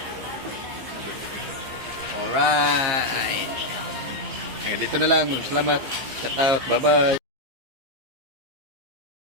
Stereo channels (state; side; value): late; left; 15 ms